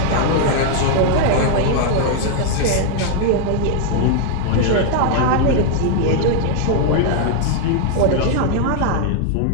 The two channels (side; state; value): both; different; correlation 0.00